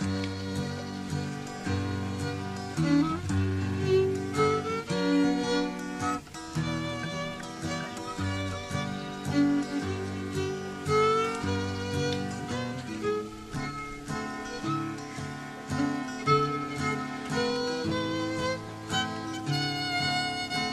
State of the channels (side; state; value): both; identical; correlation 1.00